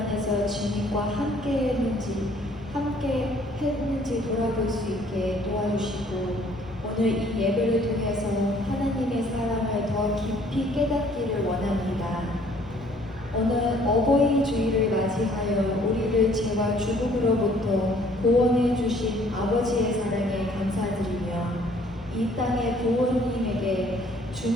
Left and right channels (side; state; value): both; normal; correlation 0.59